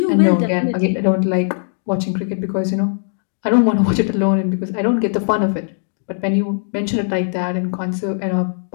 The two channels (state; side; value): silent; right; digital silence